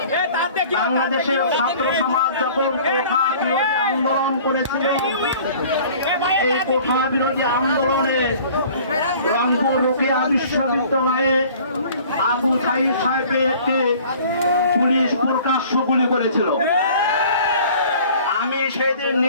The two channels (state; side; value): inverted; both; correlation -0.49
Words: বাংলাদেশের ছাত্র সমাজ যখন কোঠা বিরোধী আন্দোলন করেছিল, এই কোঠা বিরোধী আন্দোলনে রংপুর রোকেয়া বিশ্ববিদ্যালয়ে আবু সাইদ সাহেবকে পুলিশ প্রকাশ্য গুলি করেছিল। আমি সেদিন